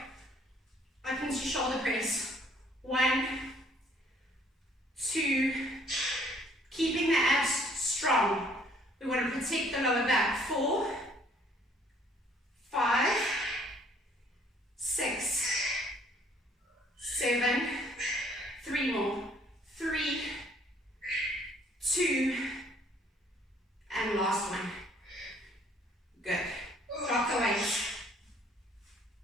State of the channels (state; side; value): normal; both; correlation 0.61